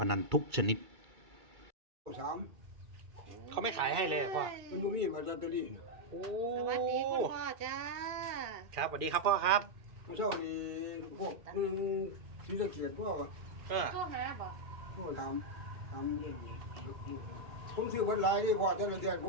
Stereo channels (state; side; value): late; left; 2.6 ms